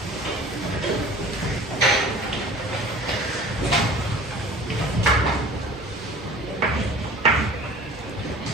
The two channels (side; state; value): both; normal; correlation 0.44